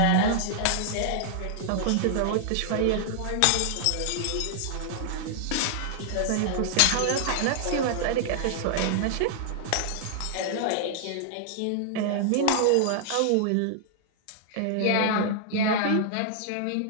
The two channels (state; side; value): different; both; correlation -0.01